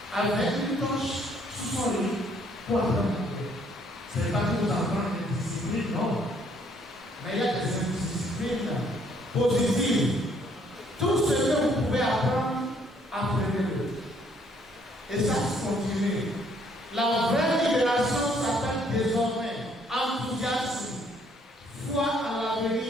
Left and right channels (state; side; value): normal; both; correlation 0.65